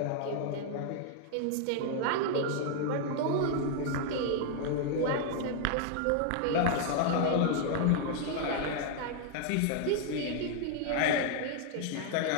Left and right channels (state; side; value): different; both; correlation 0.00